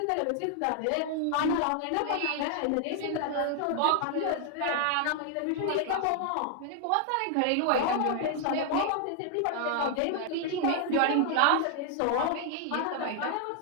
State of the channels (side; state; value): both; different; correlation 0.00